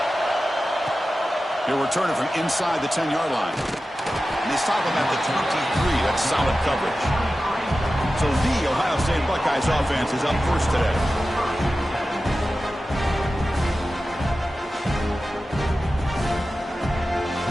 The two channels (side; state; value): both; normal; correlation 0.94